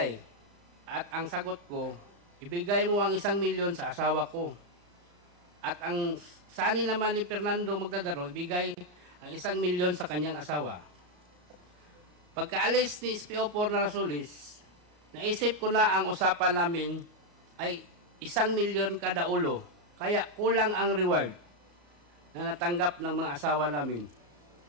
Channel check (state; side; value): late; left; 33 ms